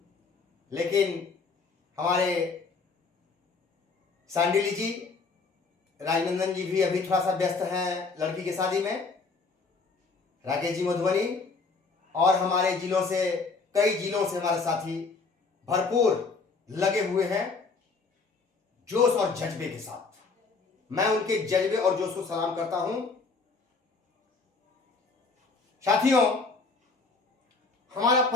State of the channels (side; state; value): right; quieter; 4.3 dB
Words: लेकिन हमारे सांडिली जी, राजनंदन जी भी अभी थोड़ा सा व्यस्त हैं लड़की की शादी में। राकेश जी मधुबनी और हमारे जिलों से, कई जिलों से हमारे साथी भरपूर लगे हुए हैं जोश और जज्बे के साथ। मैं उनके जज्बे और जोश को सलाम करता हूं। साथियों, हमारा